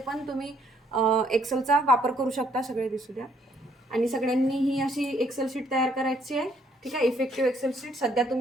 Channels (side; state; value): both; normal; correlation 0.68